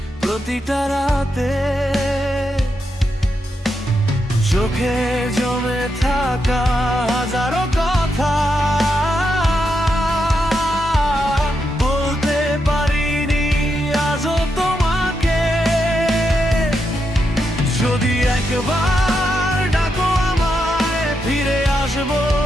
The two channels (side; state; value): both; normal; correlation 0.84